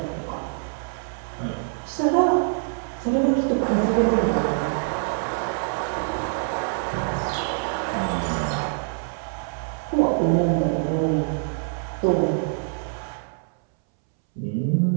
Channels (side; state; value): left; silent; 62 dB below the other